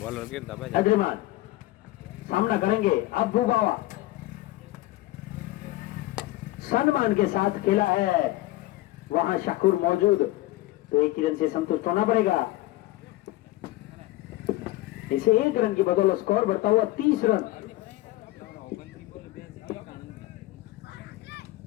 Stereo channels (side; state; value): right; quieter; 17.6 dB